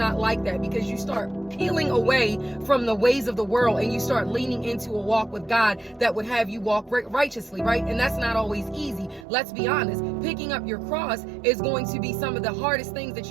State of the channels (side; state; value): left; drops out; at 9.2 s